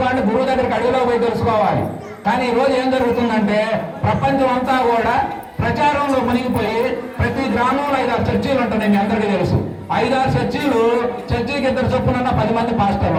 గురువు దగ్గరికి అడుగులో పోయి తెలుసుకోవాలి. కానీ ఈరోజు ఏం జరుగుతుందంటే ప్రపంచం అంతా కూడా ప్రచారంలో మునిగిపోయి ప్రతి గ్రామంలో 5-6 చర్చీలు ఉంటున్నాయి. మీ అందరికీ తెలుసు. 5-6 చర్చీలు, చర్చీకి 2 చొప్పున 10 మంది పాస్టర్లు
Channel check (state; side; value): identical; both; correlation 1.00